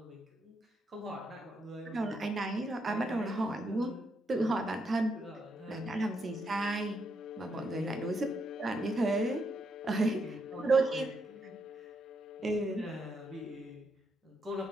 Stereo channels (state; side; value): normal; both; correlation 0.79